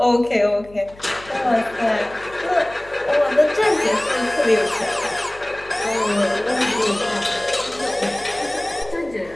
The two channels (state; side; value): noise; left; hum, 23 dB below the sound